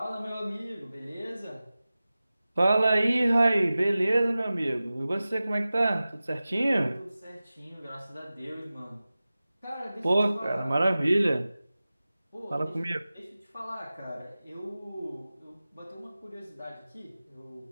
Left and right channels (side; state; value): both; inverted; correlation -0.96